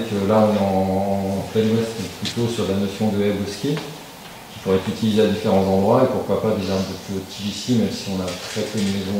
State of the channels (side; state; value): both; identical; correlation 1.00